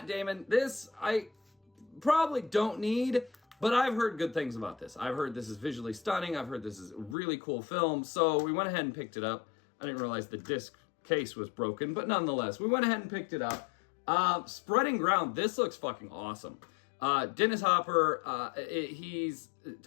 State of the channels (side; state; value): right; drops out; at 7.2 s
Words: Damon. This I probably don't need, but I've heard good things about this. I've heard this is visually stunning. I've heard this is a really cool film. So we went ahead and picked it up. I didn't realize the disc case was broken, but nonetheless, we went ahead and picked it up. Spreading Ground. This looks fucking awesome. Dennis Hopper, he's